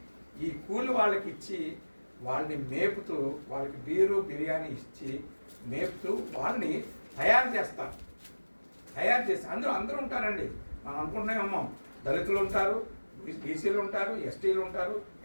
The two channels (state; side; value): inverted; both; correlation -1.00